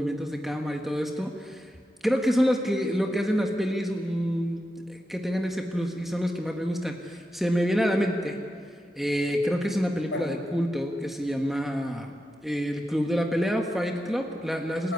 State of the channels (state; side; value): normal; both; correlation 0.89